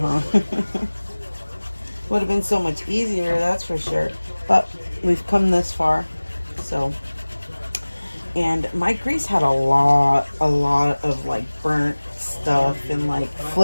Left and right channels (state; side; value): inverted; both; correlation -1.00